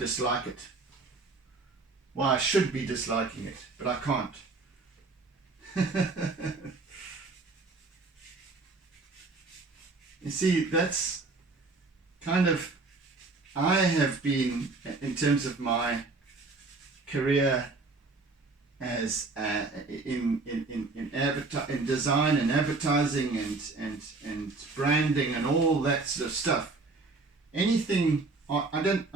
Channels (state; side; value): quieter; left; 3.7 dB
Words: it, why I should be disliking it, but I can't. You see, that's kind of, I have been, in terms of my career as in design and advertising and branding and all that sort of stuff. Anything, I don't